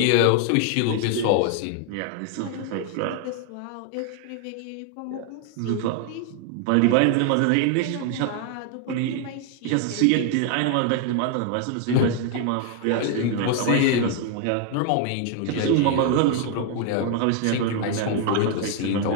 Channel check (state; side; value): different; both; correlation 0.00